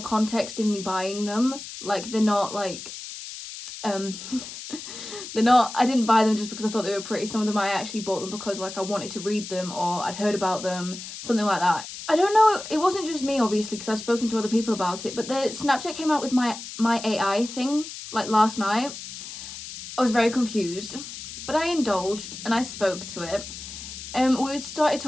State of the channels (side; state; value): left; noise; hiss, 11 dB below the sound